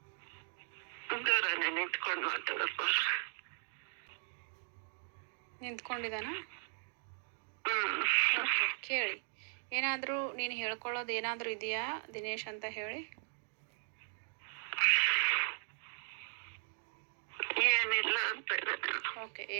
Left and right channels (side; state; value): left; silent; 53 dB below the other